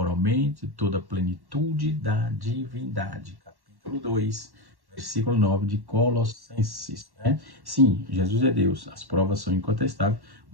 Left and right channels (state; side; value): late; left; 1.1 ms